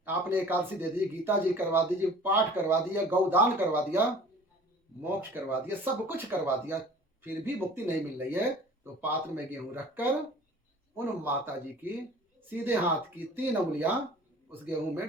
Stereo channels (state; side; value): normal; both; correlation 0.46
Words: आपने एकादशी दे दी, गीता जी करवा दीजिए, पाठ करवा दिया, गौदान करवा दिया, मोक्ष करवा दिया, सब कुछ करवा दिया, फिर भी मुक्ति नहीं मिल रही है, तो पात्र में गेहूं रखकर उन माता जी की सीधे हाथ की 3 उंगलियां उस गेहूं